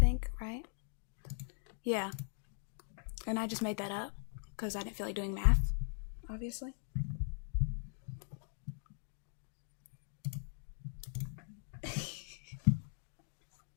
right? Yeah. And I just made that up, because I didn't feel like doing math, obviously.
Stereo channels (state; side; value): silent; right; 51 dB below the other